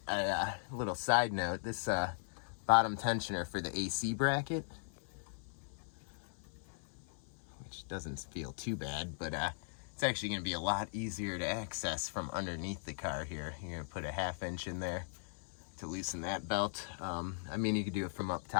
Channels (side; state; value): right; silent; 52 dB below the other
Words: a little side note, this bottom tensioner for the AC bracket, which doesn't feel too bad, but it's actually gonna be a lot easier to access from underneath the car here. You're gonna put a 1/2 inch in there to loosen that belt. I mean, you could do it from up